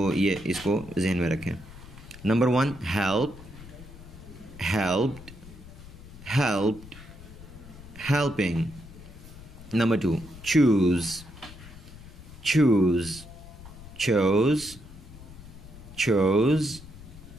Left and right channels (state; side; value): noise; left; rumble, 17 dB below the sound